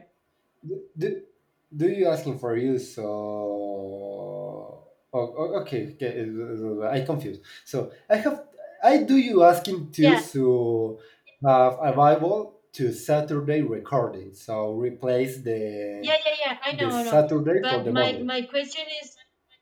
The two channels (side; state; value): both; identical; correlation 1.00